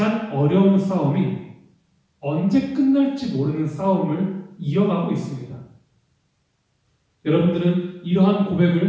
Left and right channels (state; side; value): identical; both; correlation 1.00